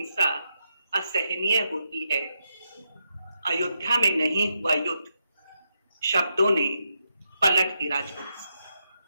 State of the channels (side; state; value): both; inverted; correlation -0.83